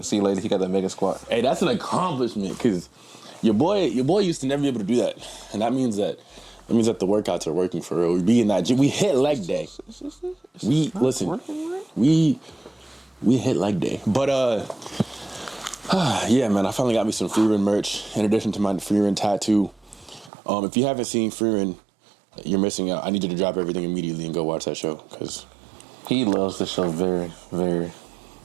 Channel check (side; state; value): left; drops out; at 20.3 s